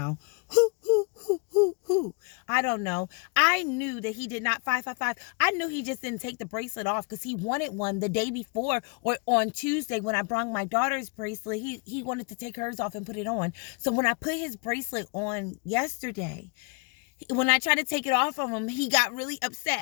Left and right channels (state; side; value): quieter; right; 33.5 dB